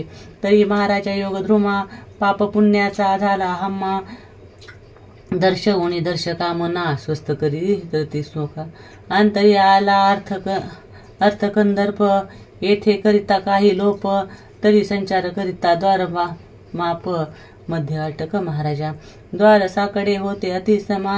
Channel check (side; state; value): both; identical; correlation 1.00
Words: तरी महाराजा योगद्रुमा पाप पुण्याचा झाला हम्मा दर्शवणी दर्शकामना स्वस्थ करी धरती सुखा. अंतरी आला अर्थकंदर्प येथे करिता काही लोप तरी संचार करिता द्वार माप मध्ये अटक महाराजा. द्वार साकडे होते